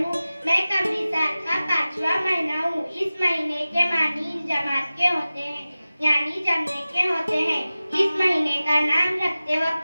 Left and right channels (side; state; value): both; inverted; correlation -0.96